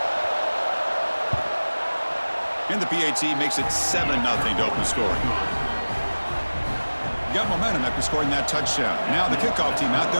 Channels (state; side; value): inverted; both; correlation -1.00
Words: And the PAT makes it 7-0 to open scoring. Got momentum after scoring that touchdown. Now the kickoff team out